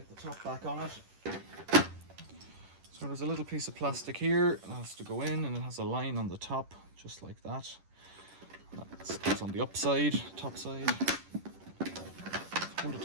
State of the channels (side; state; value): left; late; 10 ms